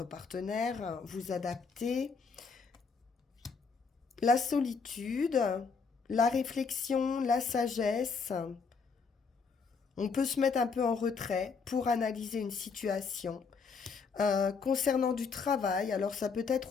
partenaire, vous adaptez, la solitude, la réflexion, la sagesse. On peut se mettre un peu en retrait pour analyser une situation. Concernant du travail, alors ça peut être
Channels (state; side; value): quieter; right; 5.2 dB